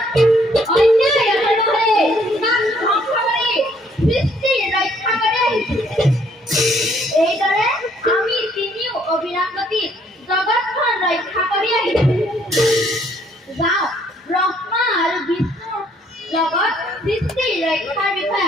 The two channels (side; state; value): both; normal; correlation 0.65